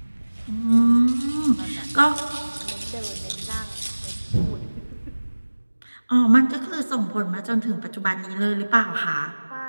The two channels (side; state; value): both; inverted; correlation -1.00